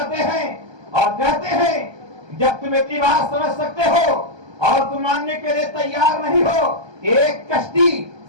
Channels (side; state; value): left; late; 1.2 ms